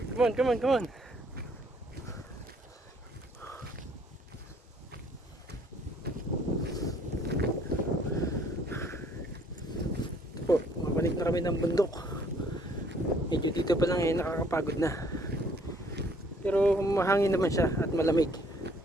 Come on, come on, come on. Po, mabalik na kami ng bundok. Medyo dito pa lang nakakapagod na. Pero mahangin naman siya at malamig.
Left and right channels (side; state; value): both; normal; correlation 0.62